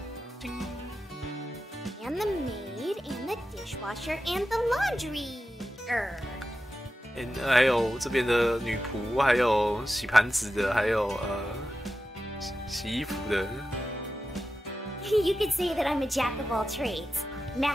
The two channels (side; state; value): both; normal; correlation 0.92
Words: And the maid, and the dishwasher, and the laundry. 还有这边的女仆，还有洗盘子的，还有洗衣服的。 You could say that I'm a jack of all trades.